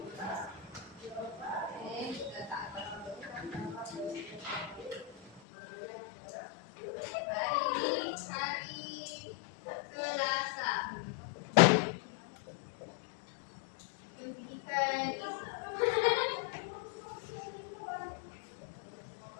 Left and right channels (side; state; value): right; drops out; at 5.4 s